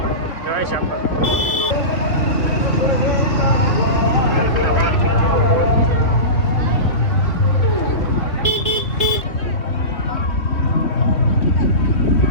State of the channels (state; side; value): late; right; 3.0 ms